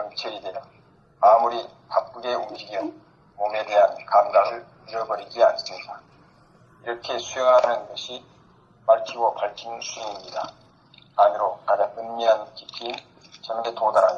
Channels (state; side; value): identical; both; correlation 1.00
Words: 되어 아무리 바쁘게 움직여 몸에 대한 감각을 잃어버리지 않습니다. 이렇게 수행하는 것이 밝히고 밝히는 수행입니다. 안으로 가장 은밀한 깊이인 점에